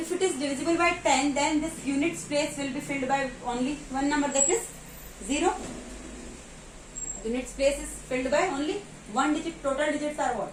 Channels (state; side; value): identical; both; correlation 1.00